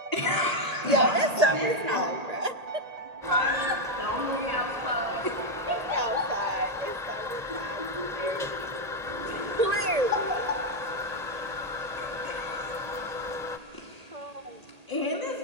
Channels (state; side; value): late; left; 1.8 ms